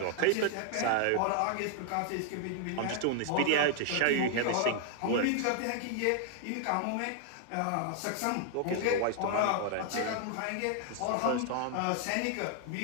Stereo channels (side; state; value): both; different; correlation 0.00